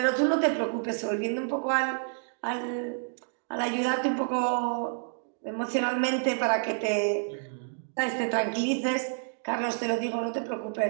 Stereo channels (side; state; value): left; silent; digital silence